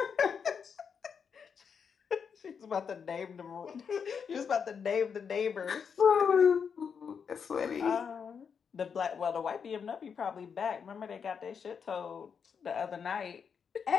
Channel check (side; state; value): right; quieter; 6.6 dB